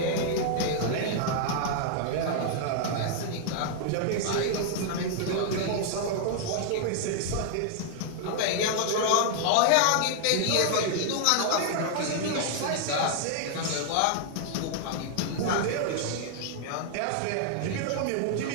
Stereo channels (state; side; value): different; both; correlation 0.00